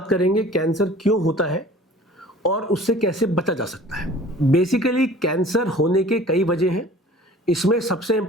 करेंगे कैंसर क्यों होता है और उससे कैसे बचा जा सकता है। बेसिकली कैंसर होने के कई वजह हैं। इसमें सबसे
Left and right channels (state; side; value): normal; both; correlation 0.46